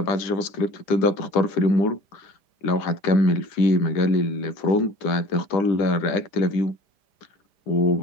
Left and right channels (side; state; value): right; late; 5.0 ms